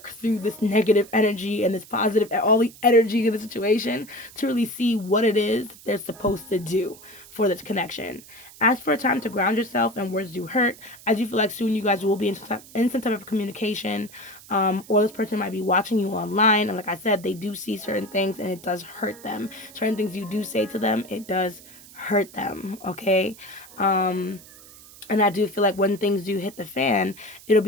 through this negative energy and this positive, all the energy of the situation to really see what it is they're supposed to do for this connection. Ask for a time to ground yourself, and words do hurt. I do feel like soon you guys will be in some type of communication, or this person might be watching you online. And like I said, they do see certain things and it does hurt them. Certain things you do say to them, it does hurt them, okay? And I do feel like when things do hit the fan, it'll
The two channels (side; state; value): right; noise; hiss, 20 dB below the sound